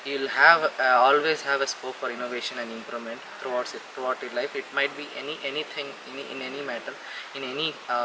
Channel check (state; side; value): identical; both; correlation 1.00